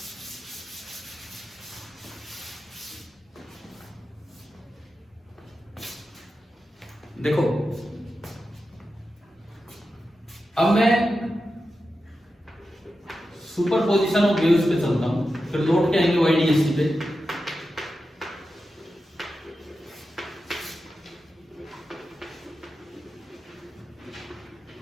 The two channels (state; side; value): normal; both; correlation 0.91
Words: देखो अब मैं सुपरपोजिशन ऑफ वेव्स पे चलता हूं, फिर लौट के आएंगे वाईडीएसटी पे।